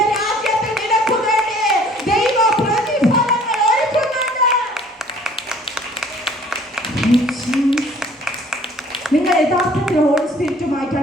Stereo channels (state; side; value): normal; both; correlation 0.54